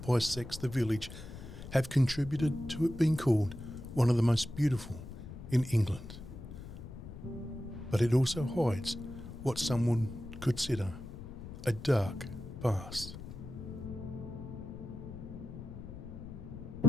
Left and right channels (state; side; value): noise; left; rumble, 12 dB below the sound